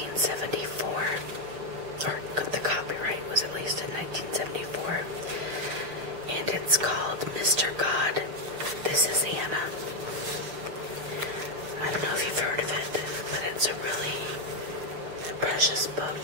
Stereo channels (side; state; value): left; late; 6.3 ms